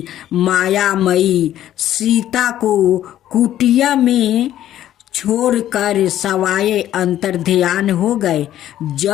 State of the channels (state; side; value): quieter; right; 12.2 dB